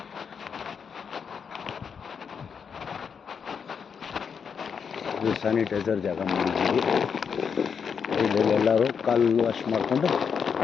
ಇದು ಸ್ಯಾನಿಟೈಸರ್ ಜಾಗ ಮಾಡಿದ್ದೀವಿ. ಇಲ್ಲಿ ಎಲ್ಲರೂ ಕಾಲು ವಾಶ್ ಮಾಡಿಕೊಂಡು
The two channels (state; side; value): quieter; right; 6.6 dB